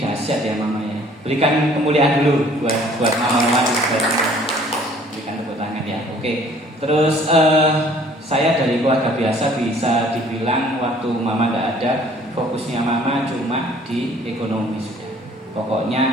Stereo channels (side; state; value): both; normal; correlation 0.56